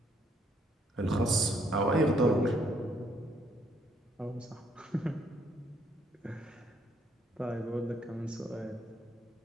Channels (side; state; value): both; normal; correlation 0.69